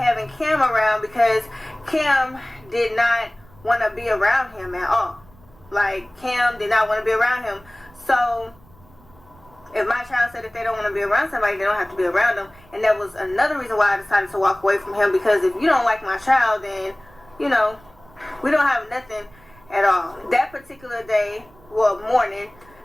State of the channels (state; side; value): noise; right; rumble, 27 dB below the sound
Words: Kim around because Kim did not want to be around him at all. Like, Kim did not want to be around him. So if my child said if they don't want to be around somebody, they don't have to be around them. And that was another reason why I decided to walk away from him, because if you don't like my child, then, you know, we don't have nothing at all. That particular day,